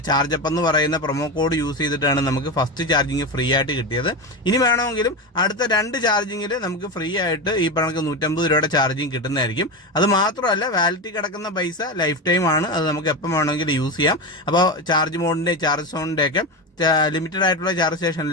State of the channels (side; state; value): both; normal; correlation 0.18